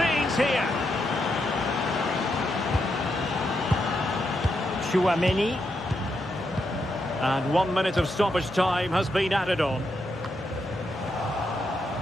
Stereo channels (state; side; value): normal; both; correlation 0.82